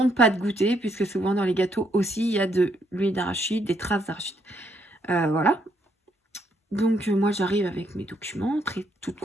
pas de goûter, puisque souvent dans les gâteaux aussi, il y a de l'huile d'arachide, des traces d'arachide. Voilà. Donc, moi, j'arrive avec mes documents, toute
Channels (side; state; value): both; normal; correlation 0.73